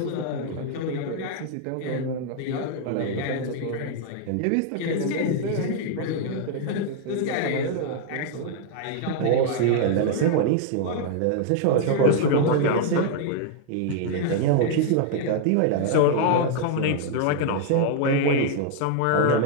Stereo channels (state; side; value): different; both; correlation 0.00